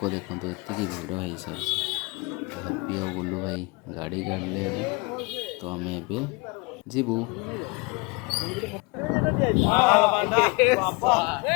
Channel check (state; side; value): quieter; right; 28.0 dB